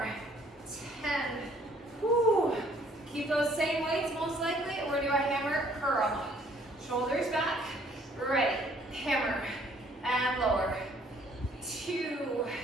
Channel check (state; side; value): normal; both; correlation 0.61